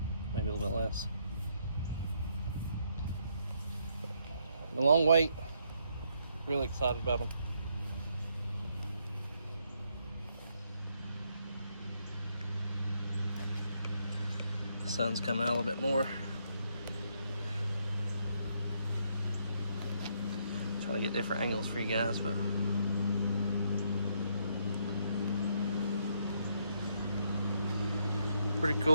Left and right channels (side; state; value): both; inverted; correlation -0.74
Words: maybe a little bit less. A long wait. Really excited about them. The sun's coming out a little bit more. Trying to get different angles for you guys, but pretty